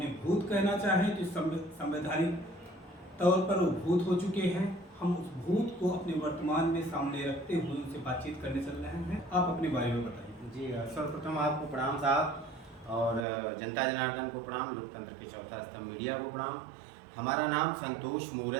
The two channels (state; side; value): drops out; left; at 13.2 s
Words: भूत कहना चाहें तो संवैधानिक तौर पर वो भूत हो चुके हैं। हम उस भूत को अपने वर्तमान में सामने रखते हुए उनसे बातचीत करने चल रहे हैं। आप अपने बारे में बताइए। जी, सर्वप्रथम आपको प्रणाम साहब, और जनता जनार्दन को प्रणाम, लोकतंत्र के चौथा स्तंभ मीडिया को प्रणाम। हमारा नाम संतोष